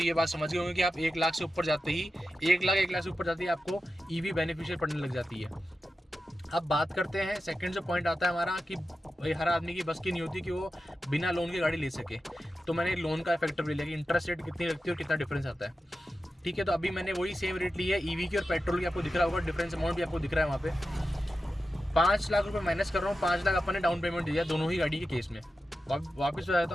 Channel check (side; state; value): both; normal; correlation 0.91